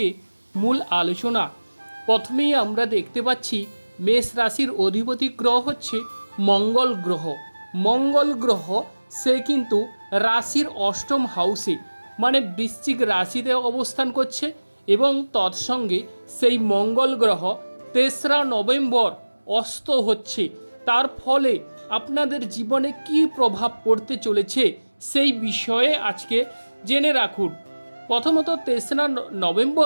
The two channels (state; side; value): inverted; both; correlation -1.00